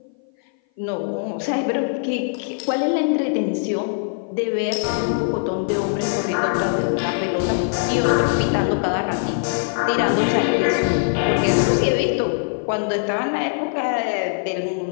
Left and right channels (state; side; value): silent; right; 57 dB below the other